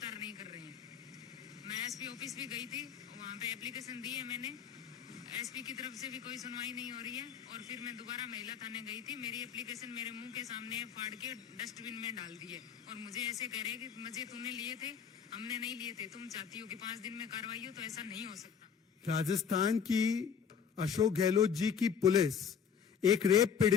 नहीं कर रहे हैं। मैं एसपी ऑफिस भी गई थी, वहां पे एप्लीकेशन दी है मैंने, एसपी की तरफ से भी कोई सुनवाई नहीं हो रही है। और फिर मैं दोबारा महिला थाने गई थी, मेरी एप्लीकेशन मेरे मुंह के सामने फाड़ के डस्टबिन में डाल दी है और मुझे ऐसे कह रहे हैं कि मुझे तूने लिए थे, हमने नहीं लिए थे, तुम चाहती हो कि 5 दिन में कार्रवाई हो, तो ऐसा नहीं हो सकता। राजस्थान की अशोक गहलोत जी की पुलिस एक रेप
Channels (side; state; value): right; quieter; 7.2 dB